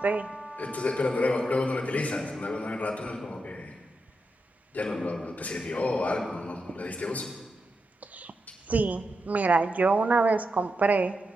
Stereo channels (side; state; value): both; normal; correlation 0.87